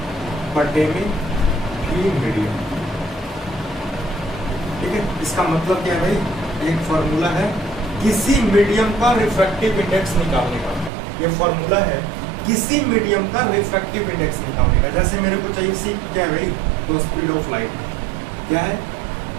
बटे में भी मीडियम, ठीक है। इसका मतलब क्या है भाई, एक फॉर्मूला है किसी मीडियम का रिफ्रैक्टिव इंडेक्स निकालने का, ये फॉर्मूला है किसी मीडियम का रिफ्रैक्टिव इंडेक्स निकालने का। जैसे मेरे को चाहिए सी क्या है भाई, तो स्पीड ऑफ लाइट क्या है,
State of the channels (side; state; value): left; drops out; at 10.9 s